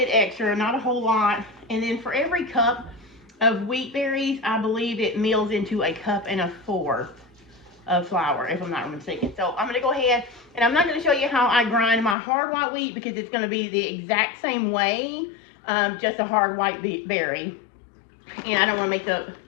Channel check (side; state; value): right; drops out; at 12.2 s